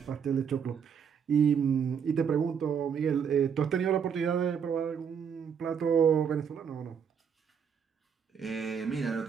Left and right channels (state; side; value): quieter; left; 7.2 dB